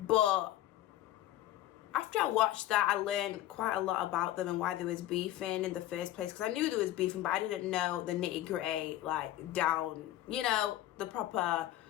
after I watched that, I learned quite a lot about them and why they was beefing in the first place. Because I knew they was beefing, but I didn't know the nitty gritty, like down, you know, the proper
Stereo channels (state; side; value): quieter; right; 14.1 dB